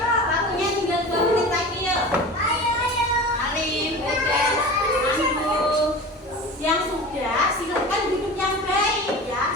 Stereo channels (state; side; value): normal; both; correlation 0.34